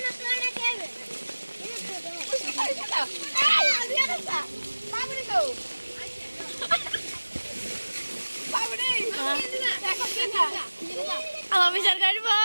আমার বিচার কাটবো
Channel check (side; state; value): both; inverted; correlation -1.00